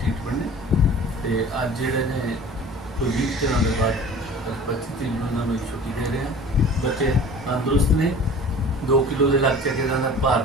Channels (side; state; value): both; normal; correlation 0.43